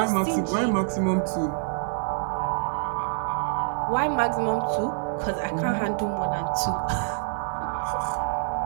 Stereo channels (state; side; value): silent; left; 61 dB below the other